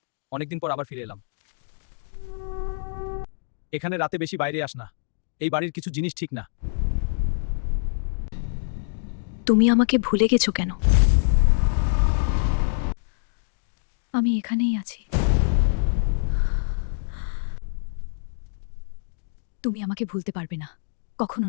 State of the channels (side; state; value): right; silent; digital silence